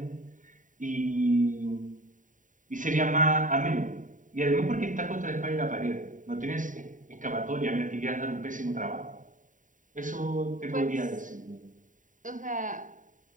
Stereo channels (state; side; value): late; left; 0.38 ms